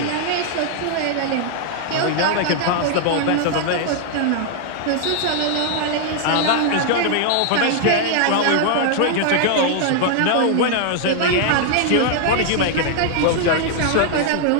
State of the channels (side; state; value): both; different; correlation 0.00